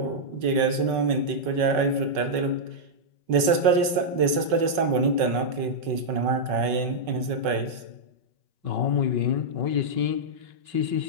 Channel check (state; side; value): late; left; 5.3 ms